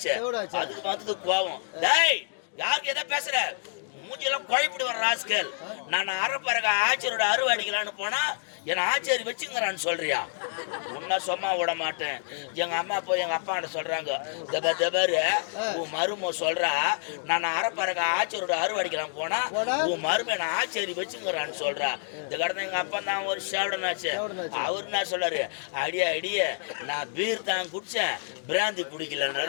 அதுக்கு வந்தது கோவம். டேய் யாருக்கு எதை பேசுற, மூஞ்சியெல்லாம் குழப்பிட்டு வர ராஸ்கல். நான் அரைப்பறக்க ஆச்சரியோட அருவா அடிக்கலான்னு போனா என்னை ஆச்சரி வச்சுங்கிறான்னு சொல்றியா? உன்ன சும்மா விட மாட்டேன். எங்க அம்மா போய் எங்க அப்பாண்ட சொல்றாங்க, தபாரு உன் மரும சொல்றா நான் அரைப்பறக்க ஆச்சரியோட அருவா அடிக்கலாம் போனா உன் மரும என்ன ஆச்சரி வச்சுங்கிறான்னு சொல்றா. இந்த கடந்த எங்க அப்பா தான் ஒரு சேவடனாச்சு. அவரு என்ன சொல்றாரு, அடிய நான் பீர் தான் குடிச்சேன், பிராந்தி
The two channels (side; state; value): right; silent; digital silence